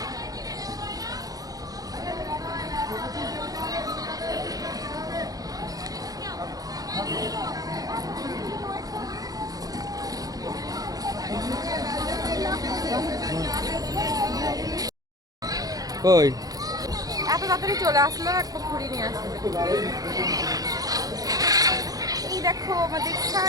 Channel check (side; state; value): left; late; 0.18 ms